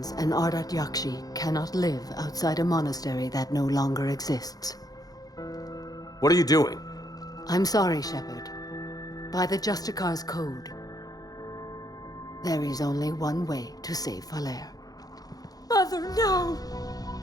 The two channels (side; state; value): right; late; 0.18 ms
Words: an Ardat Yakshi cannot live outside a monastery that no longer exists. What are you doing? I'm sorry, Shepard. By the Justicar's code, there is only one way to save Falaire. Mother, no!